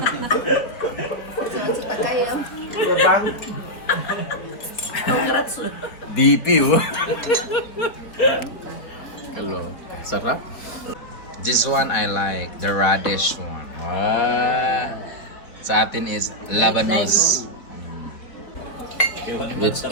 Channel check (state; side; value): late; right; 4.1 ms